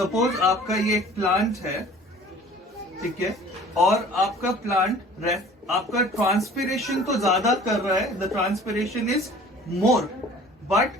आपका ये एक प्लांट है, ठीक है, और आपका प्लांट आपका ट्रांसपिरेशन तो ज्यादा कर रहा है, the transpiration is more,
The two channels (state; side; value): normal; both; correlation 0.47